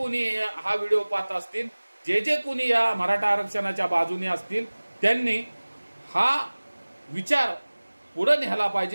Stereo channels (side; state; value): both; inverted; correlation -1.00